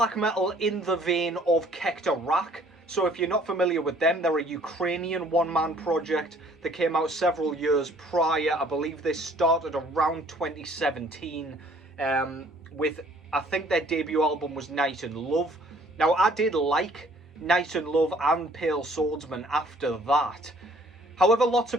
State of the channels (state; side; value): normal; both; correlation 0.58